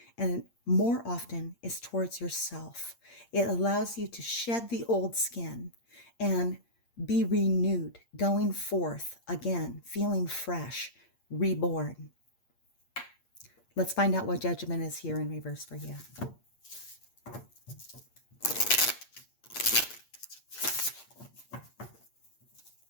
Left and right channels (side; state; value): right; late; 8.6 ms